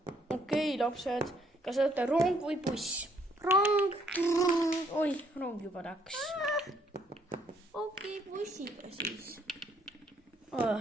lapsed. Kas olete rong või buss? Rong. Oi, rong juba läks. Okei, bussiga siis.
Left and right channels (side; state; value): both; normal; correlation 0.68